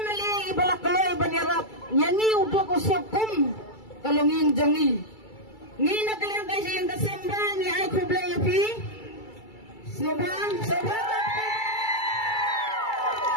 mali ibalakaloy banyarap yangi udok usakum kalunging jangi ngi nakalang kasi yang kasemba ni ay kublay api sobang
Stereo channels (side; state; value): right; late; 2.3 ms